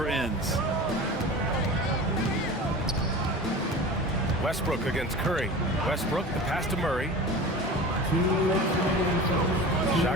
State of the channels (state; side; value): normal; both; correlation 0.35